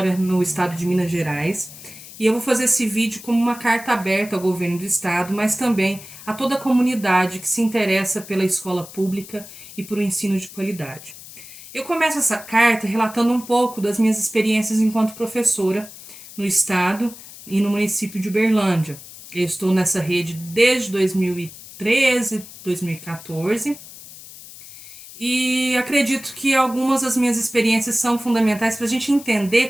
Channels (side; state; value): left; noise; hiss, 16 dB below the sound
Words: no estado de Minas Gerais e eu vou fazer esse vídeo como uma carta aberta ao governo do estado, mas também a toda a comunidade que se interessa pela escola pública e por um ensino de qualidade. Eu começo essa carta relatando um pouco das minhas experiências enquanto professora no estado e no município de Uberlândia. Eu estou nessa rede desde 2013, 2014. E acredito que algumas das minhas experiências são fundamentais para a gente entender